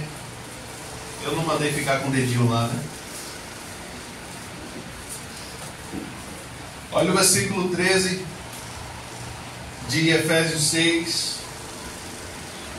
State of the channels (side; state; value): both; identical; correlation 1.00